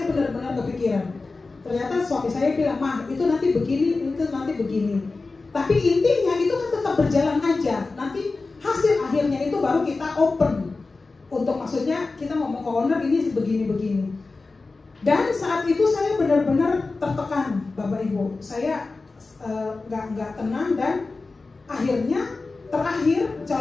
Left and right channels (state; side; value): quieter; right; 3.7 dB